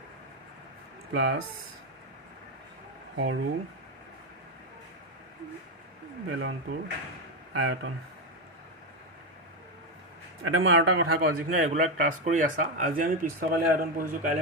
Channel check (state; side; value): normal; both; correlation 0.09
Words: প্লাস সৰু বেলনটোৰ আয়তন এটা মই আৰু এটা কথা কওঁ যিখিনি ৰেগুলাৰ ক্লাছ কৰি আছা আজি আমি পৃষ্ঠকালী আয়তন পঢ়িছোঁ